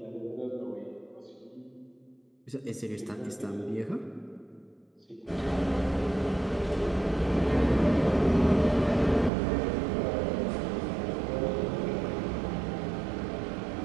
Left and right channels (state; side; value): drops out; left; at 9.3 s